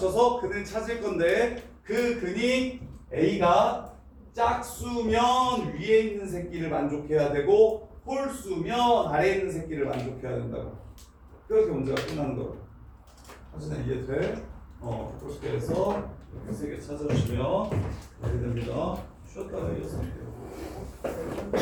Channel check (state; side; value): identical; both; correlation 1.00